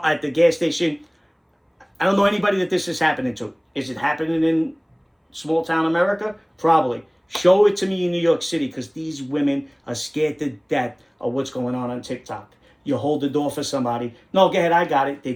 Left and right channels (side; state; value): both; identical; correlation 1.00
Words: gas station. I don't know anybody that this is happening to. Is it happening in small town America? Probably. Show it to me in New York City, because these women are scared to death of what's going on TikTok. You hold the door for somebody. No, go ahead, I got it. They